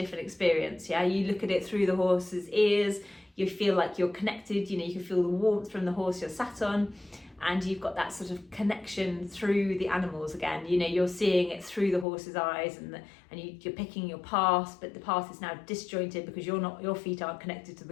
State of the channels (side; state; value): right; drops out; at 12.1 s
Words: experience. You look at it through the horse's ears, you feel like you're connected, you can feel the warmth from the horse you're sat on, and you've got that sort of connection through the animals again. You're seeing it through the horse's eyes, and you're picking your path, but the path is now disjointed because your feet aren't connected to